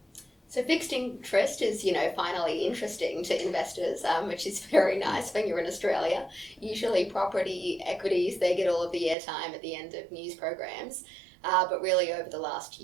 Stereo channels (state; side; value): drops out; left; at 9.2 s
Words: So fixed interest is, finally interesting to investors, which is very nice when you're in Australia. Usually property, equities, they get all of the airtime at the end of news programs. But really over the last